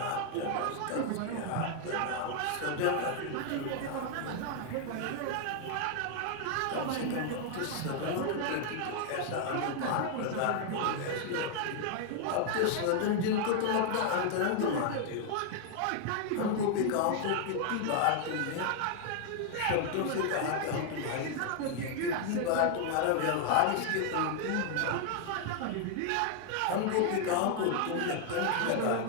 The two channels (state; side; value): different; both; correlation 0.00